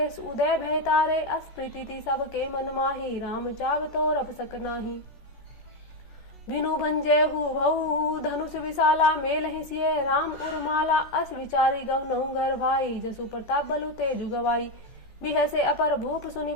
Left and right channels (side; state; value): right; late; 14 ms